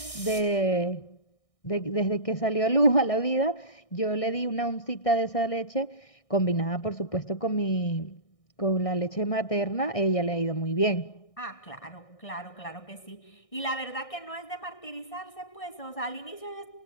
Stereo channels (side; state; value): right; late; 1.6 ms